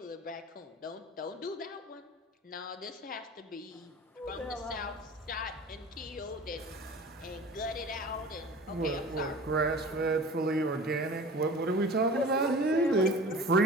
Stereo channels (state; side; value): normal; both; correlation 0.40